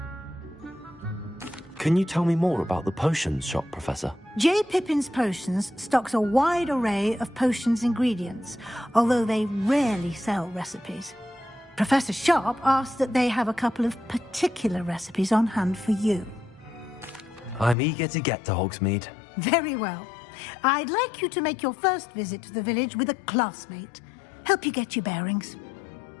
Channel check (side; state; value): right; drops out; at 17.8 s